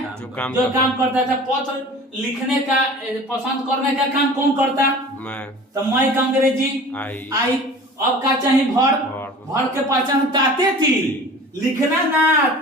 जो काम करता है। पत्र लिखने का पसंद करने का काम कौन करता? मैं। तो मैं का अंग्रेजी आई। अब का चाहिए वर्ब, वर्ब के पहचान ताते थी, लिखना ना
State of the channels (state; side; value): normal; both; correlation 0.42